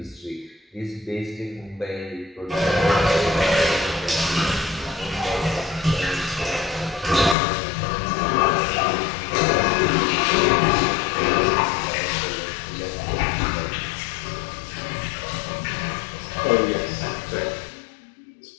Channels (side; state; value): right; drops out; at 7.4 s